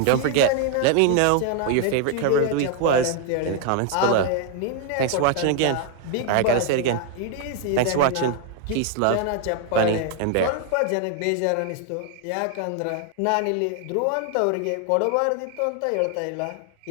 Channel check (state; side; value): different; both; correlation 0.00